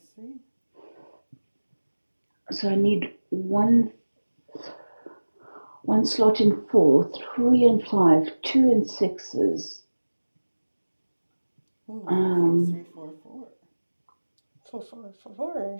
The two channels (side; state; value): both; inverted; correlation -1.00